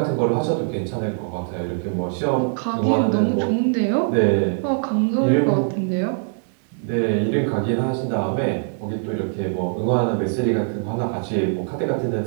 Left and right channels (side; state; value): left; silent; digital silence